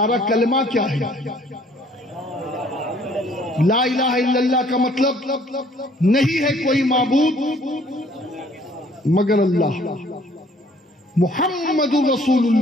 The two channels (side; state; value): both; normal; correlation 0.59